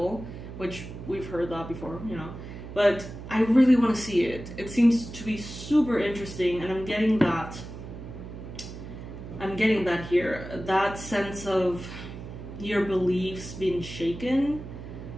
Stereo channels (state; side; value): noise; right; hum, 11 dB below the sound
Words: Which we've heard that before, you know. But I really want to see it. It seems to be super interesting. And I'm getting that here. That sense of your beliefs being shaken.